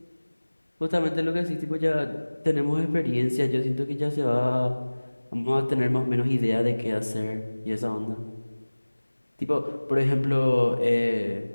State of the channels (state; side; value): inverted; both; correlation -1.00